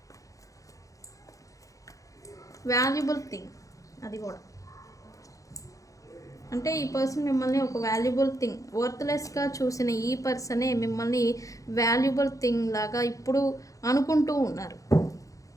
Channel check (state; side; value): late; right; 0.16 ms